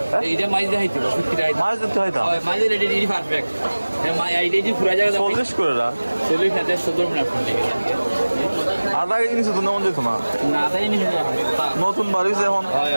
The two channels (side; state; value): both; inverted; correlation -1.00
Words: এইটা মাছ দেখাই দিব মাছ দিতে হয় দাও মাছের রেডি পারফেক্ট আইডিয়া যে পুরা জায়গা 40 করে না 40 হাতে 17 মিনিট লাগে আধা কেজি নিচে তো নেমন যেত না না আদাই নি নতুন বাড়িছে এখন